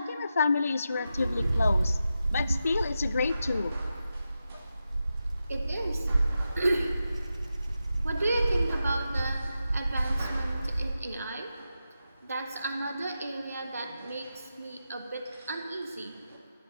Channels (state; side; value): inverted; both; correlation -0.89